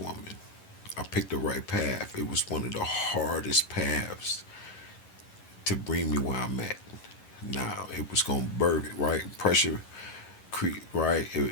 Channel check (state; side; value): late; right; 11 ms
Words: I picked the right path. It was one of the hardest paths to bring me where I'm at. Now it was gonna birth it, right? Pressure, right?